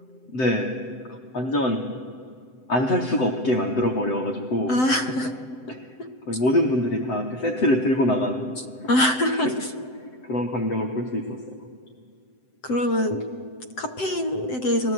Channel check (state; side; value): late; right; 7.8 ms